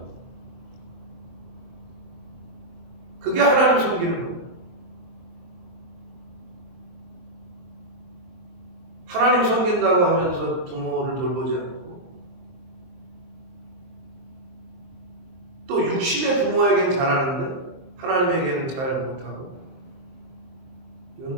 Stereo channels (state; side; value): late; left; 23 ms